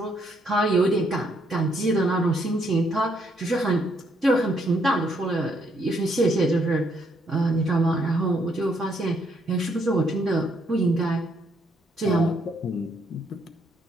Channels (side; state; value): both; normal; correlation 0.72